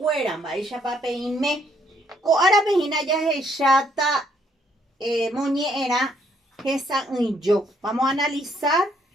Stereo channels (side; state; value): both; normal; correlation 0.69